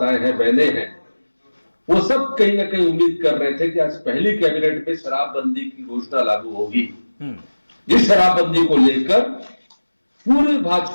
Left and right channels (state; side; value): inverted; both; correlation -1.00